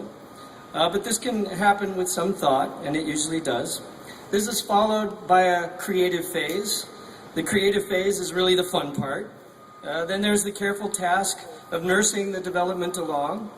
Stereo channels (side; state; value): both; identical; correlation 1.00